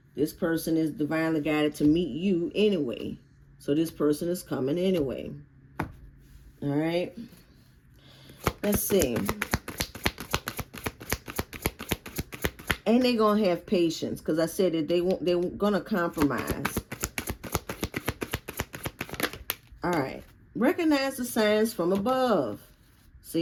this person is divinely guided to meet you anyway. So this person is coming anyway. All right. Let's see. And they're going to have patience, because I said that they're going to compromise. All right. Recognize the signs from above.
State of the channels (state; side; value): identical; both; correlation 1.00